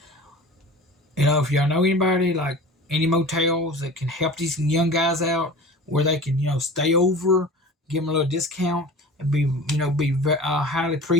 if y'all know anybody like any motels that can help these young guys out, where they can stay over, give them a little discount, and be highly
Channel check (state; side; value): normal; both; correlation 0.38